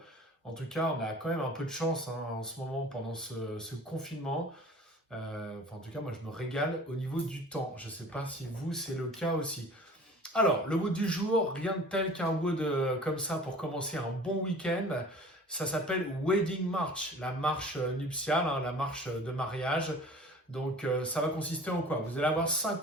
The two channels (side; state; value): both; normal; correlation 0.45